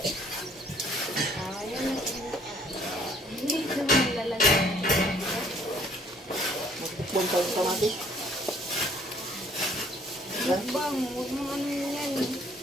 Hindi naman nilalagay. Bukbang pa yung kamatis. Mukbang. Huwag mo ano yan.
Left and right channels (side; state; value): both; normal; correlation 0.61